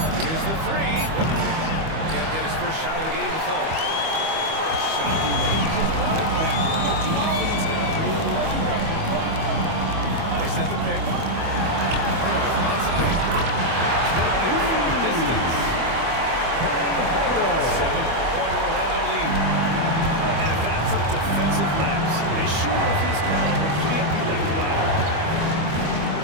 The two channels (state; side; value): late; left; 25 ms